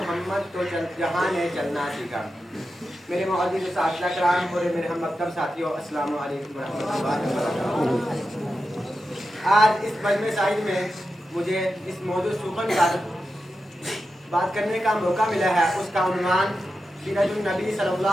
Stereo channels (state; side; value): normal; both; correlation 0.90